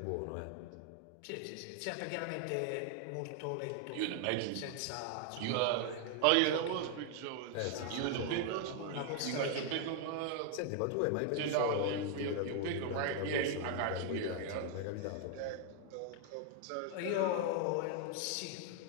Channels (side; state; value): both; different; correlation 0.00